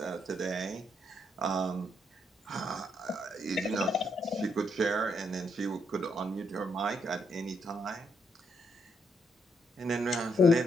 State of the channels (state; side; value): normal; both; correlation 0.76